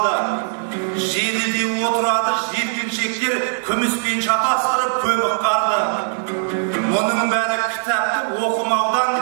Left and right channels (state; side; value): silent; left; 57 dB below the other